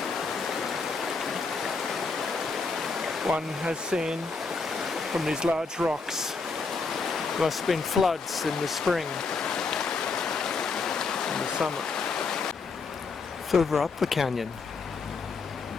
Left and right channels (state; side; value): quieter; right; 4.5 dB